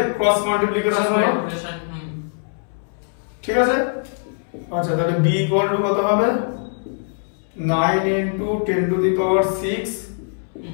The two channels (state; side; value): silent; right; 64 dB below the other